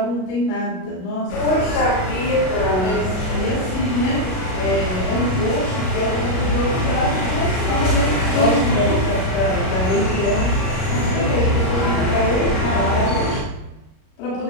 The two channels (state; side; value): late; right; 38 ms